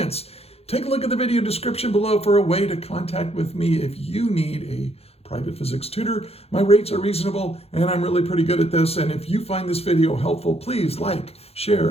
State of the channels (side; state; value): right; late; 0.29 ms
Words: Take a look at the video description below for a way to contact with me if you need a private physics tutor. My rates are reasonable and I'm really pretty good at this. And if you find this video helpful, please like,